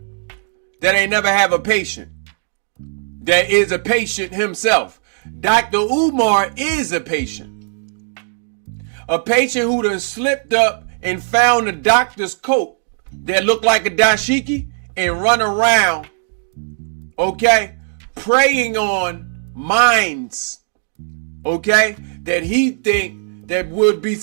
that ain't never have a patient. That is a patient himself. Dr. UMAR is a patient. A patient who done slipped up and found a doctor's coat that look like a dashiki and run around, okay, preying on minds, okay, that he think that would be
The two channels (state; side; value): silent; left; digital silence